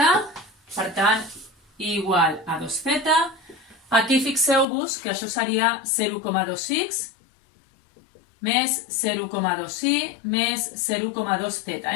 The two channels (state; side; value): drops out; right; at 4.7 s